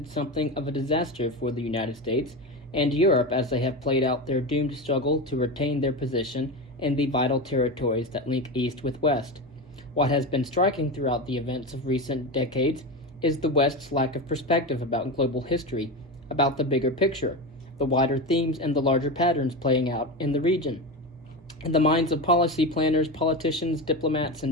something of a disaster for the United States and Europe as they have played out their doomed struggle to retain their position in the vital territories that link East with West. What has been striking throughout the events of recent decades is the West's lack of perspective about global history, about the bigger picture, the wider themes and the larger patterns playing out in the region. In the minds of policy planners, politicians, diplomats,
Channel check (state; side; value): normal; both; correlation 0.21